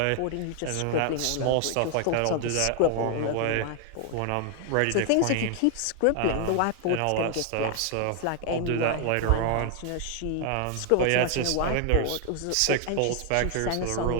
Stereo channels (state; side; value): different; both; correlation 0.00